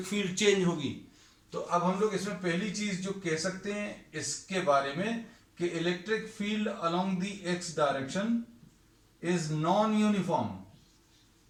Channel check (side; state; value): both; identical; correlation 1.00